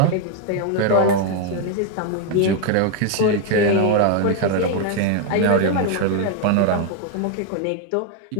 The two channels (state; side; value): different; both; correlation 0.01